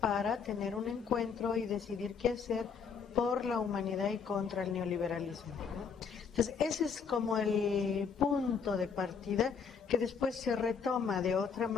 para tener un encuentro y decidir qué hacer por la humanidad y contra el neoliberalismo, ¿no? Entonces, ese es como el punto de partida que después se retoma de otra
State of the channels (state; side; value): quieter; right; 6.2 dB